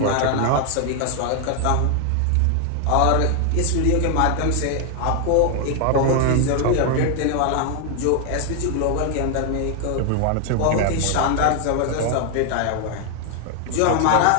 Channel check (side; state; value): both; different; correlation 0.00